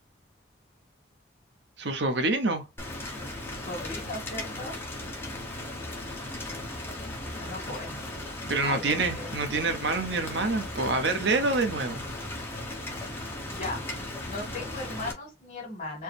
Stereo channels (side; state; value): both; normal; correlation 0.17